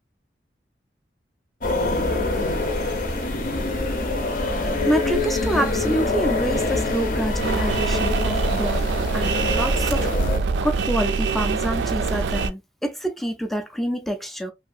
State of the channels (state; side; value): normal; both; correlation 0.53